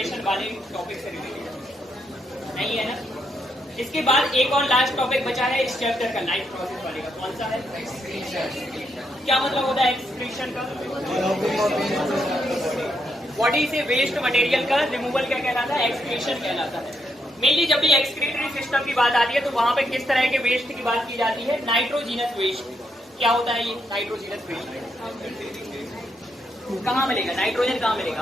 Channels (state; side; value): normal; both; correlation 0.79